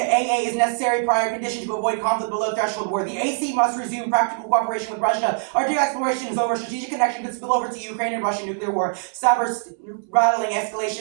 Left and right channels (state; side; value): silent; left; digital silence